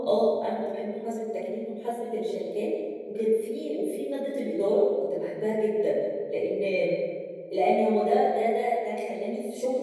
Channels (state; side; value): identical; both; correlation 1.00